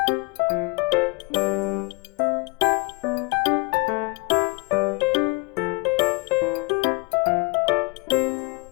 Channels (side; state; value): right; quieter; 28.7 dB